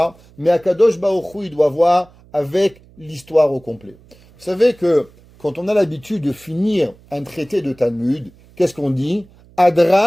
mais Akadosh Baruch Hu, il doit voir avec l'histoire au complet. Vous savez que quand on a l'habitude de finir un traité de Talmud, qu'est-ce qu'on dit?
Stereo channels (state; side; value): noise; right; hum, 27 dB below the sound